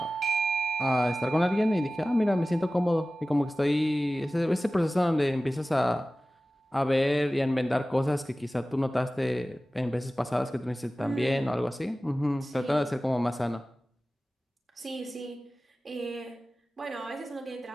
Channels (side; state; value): both; normal; correlation 0.96